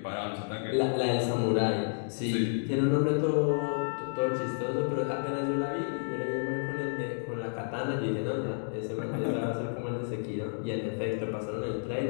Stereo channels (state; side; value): silent; right; digital silence